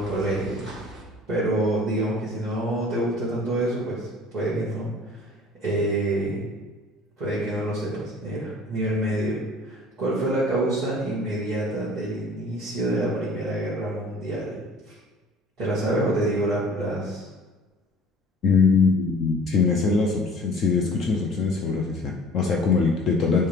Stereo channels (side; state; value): both; normal; correlation 0.48